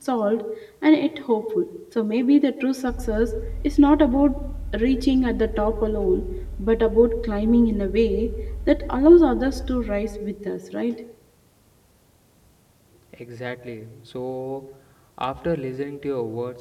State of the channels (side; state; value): both; identical; correlation 1.00